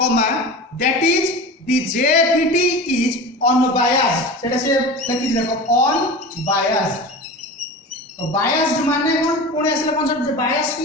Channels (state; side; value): normal; both; correlation 0.32